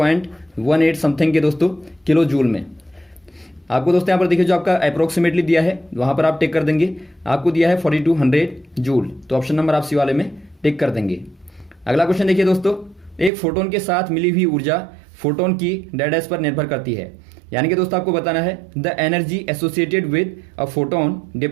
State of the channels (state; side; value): drops out; left; at 13.3 s